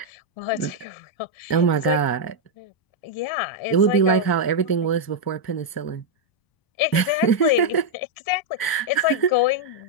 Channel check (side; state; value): right; late; 1.0 ms